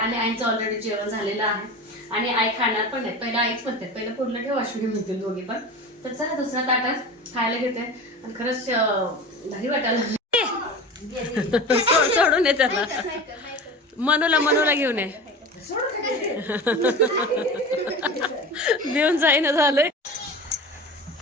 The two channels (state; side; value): normal; both; correlation 0.32